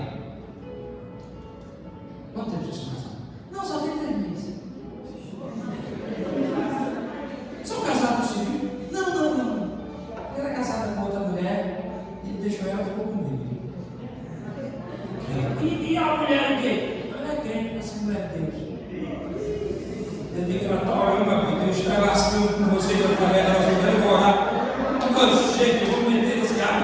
Quanto tempo você casado? Não, só tem 3 meses. São casados civil? Não. Eu era casada com outra mulher, ele deixou ela e ficou comigo. E a mulher o quê? Ela é crente, essa mulher de Deus. Eu digo que ela está orando, porque Deus está lascando com você e através da nossa vida, eu vou orar. Quando chega, eu vou meter esse ar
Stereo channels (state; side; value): identical; both; correlation 1.00